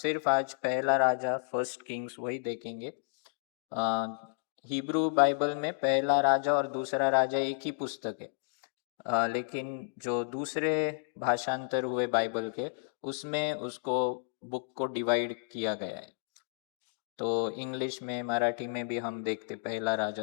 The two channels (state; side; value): silent; right; digital silence